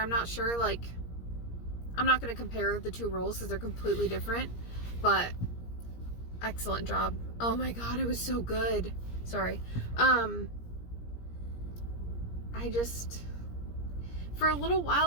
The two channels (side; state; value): right; late; 17 ms